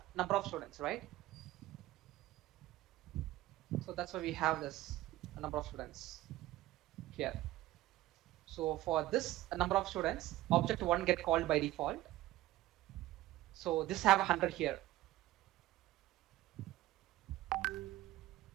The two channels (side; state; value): left; quieter; 16.0 dB